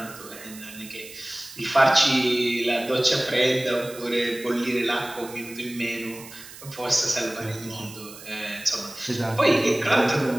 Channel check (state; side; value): noise; right; hiss, 16 dB below the sound